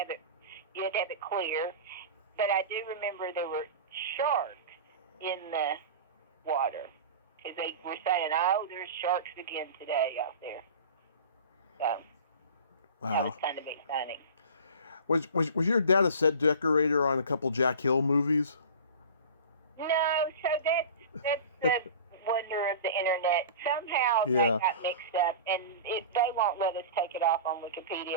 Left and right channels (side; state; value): both; inverted; correlation -0.35